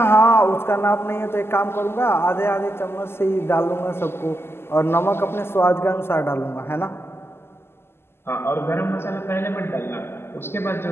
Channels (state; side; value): late; right; 0.12 ms